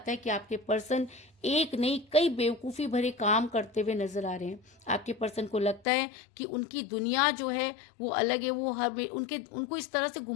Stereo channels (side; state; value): right; drops out; at 5.9 s